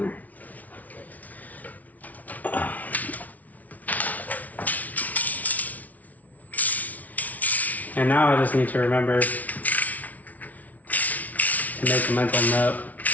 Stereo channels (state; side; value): late; right; 0.073 ms